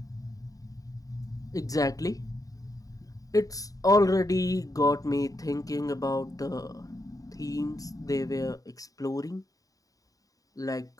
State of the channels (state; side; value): late; right; 0.17 ms